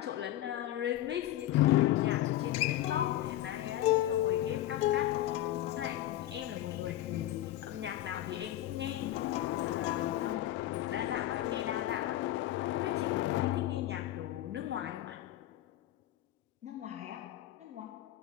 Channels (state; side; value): quieter; right; 14.0 dB